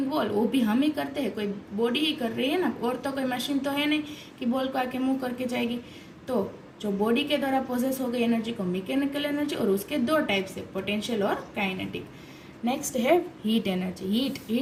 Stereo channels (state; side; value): identical; both; correlation 1.00